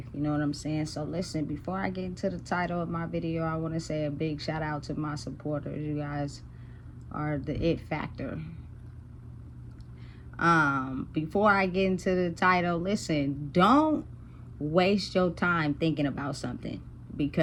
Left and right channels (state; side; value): identical; both; correlation 1.00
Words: You know what I'm saying? So listen, before I get into the title of my video, I want to say a big shout out to my supporters. You guys are the it factor. Before I get into the title, listen, don't waste your time thinking about something,